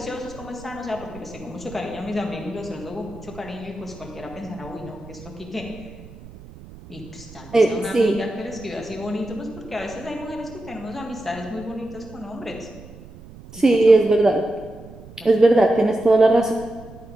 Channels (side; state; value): right; noise; rumble, 18 dB below the sound